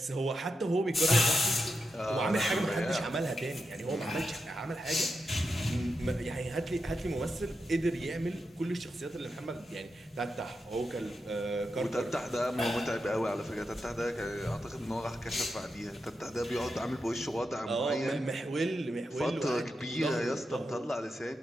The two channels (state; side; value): normal; both; correlation 0.87